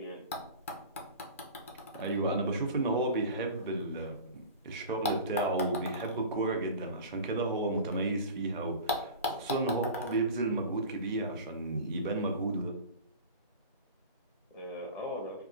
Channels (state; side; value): inverted; both; correlation -0.36